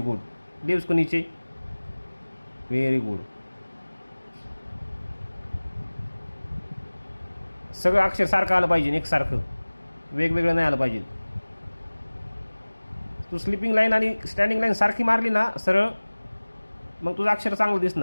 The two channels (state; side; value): inverted; both; correlation -1.00